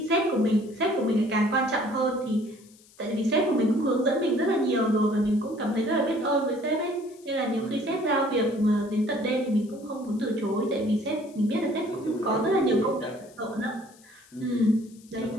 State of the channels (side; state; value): left; noise; hiss, 27 dB below the sound